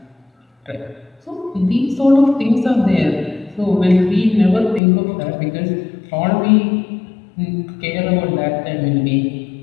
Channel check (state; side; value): drops out; right; at 4.8 s